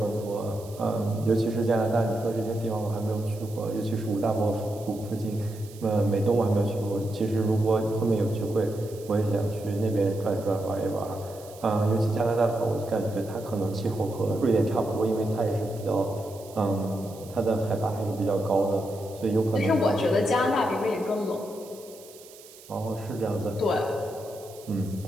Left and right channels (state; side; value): noise; right; hiss, 21 dB below the sound